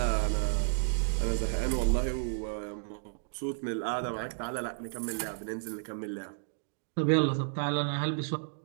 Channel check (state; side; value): silent; left; digital silence